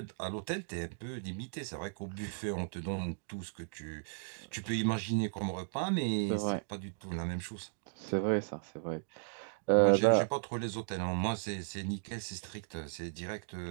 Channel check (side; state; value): left; silent; digital silence